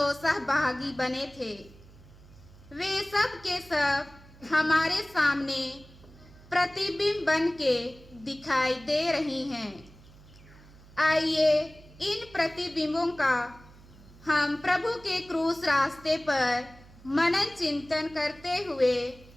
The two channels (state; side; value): noise; right; hum, 22 dB below the sound